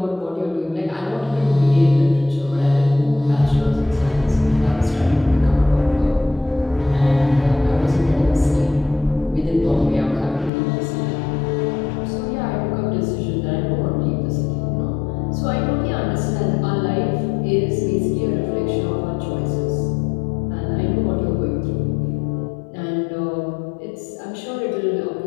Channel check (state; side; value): drops out; right; at 10.5 s